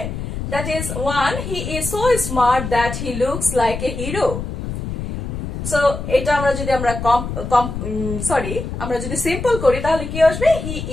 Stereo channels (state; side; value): noise; left; rumble, 6 dB below the sound